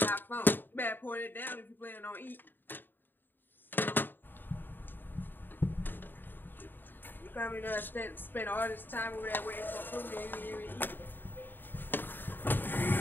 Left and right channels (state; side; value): late; right; 0.093 ms